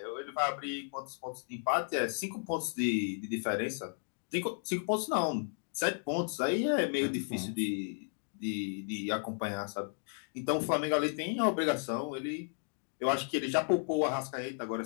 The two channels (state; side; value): silent; right; 55 dB below the other